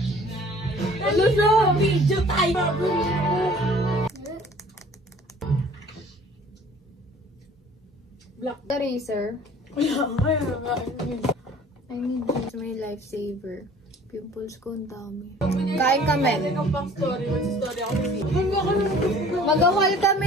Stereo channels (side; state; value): both; normal; correlation 0.51